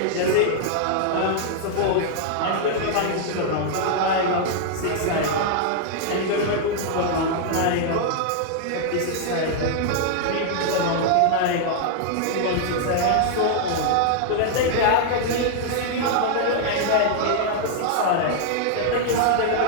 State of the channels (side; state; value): both; different; correlation -0.01